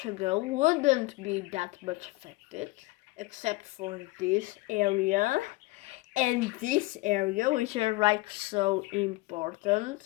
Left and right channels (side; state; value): right; quieter; 22.1 dB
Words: wouldn't be that much affected, except for this area and this area, which are like so